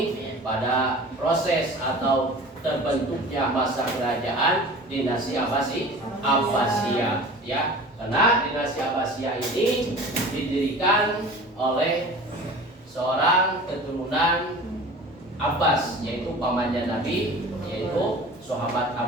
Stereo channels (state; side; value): normal; both; correlation 0.40